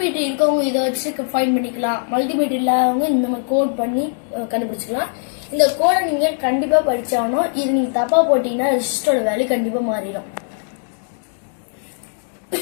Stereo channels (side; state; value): right; silent; 66 dB below the other